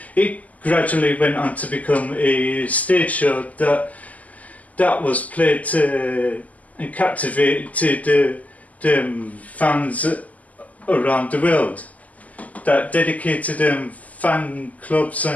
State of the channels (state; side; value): late; right; 0.075 ms